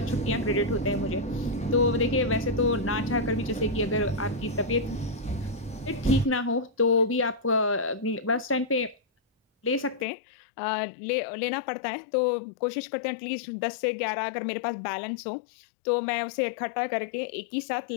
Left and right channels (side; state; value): right; drops out; at 10.1 s